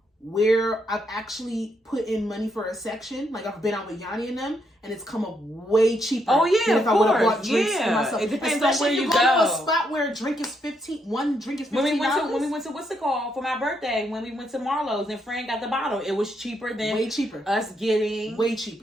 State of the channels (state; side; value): normal; both; correlation 0.77